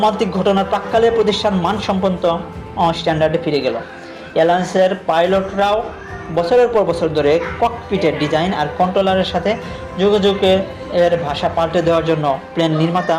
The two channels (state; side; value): identical; both; correlation 1.00